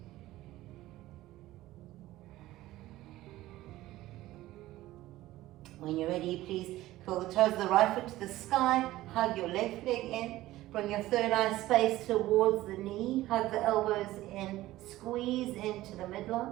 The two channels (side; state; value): left; quieter; 16.3 dB